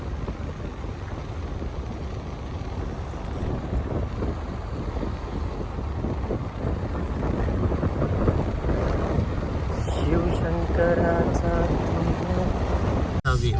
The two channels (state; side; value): identical; both; correlation 1.00